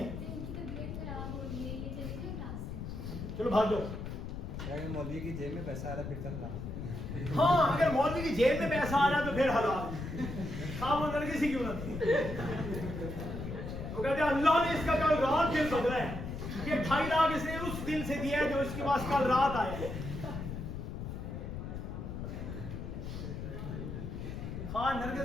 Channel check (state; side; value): noise; left; rumble, 6 dB below the sound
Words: چلو بھاگ جاؤ. مولوی کی جیب میں پیسہ آ رہا پھر تک ہاں اگر مولوی کی جیب میں پیسہ آ رہا تو پھر حلال. وہ لڑکی سی کیوں نہ تھی. وہ کہتے ہیں اللہ نے اس کا کل رات دن بدلا ہے. یہ 2.5 لاکھ اس نے اس دن سے دیا ہے جو اس کے پاس کل رات آیا ہے. ہاں